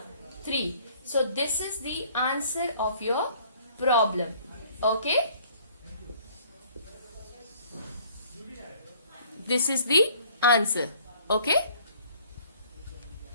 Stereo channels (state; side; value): inverted; both; correlation -0.57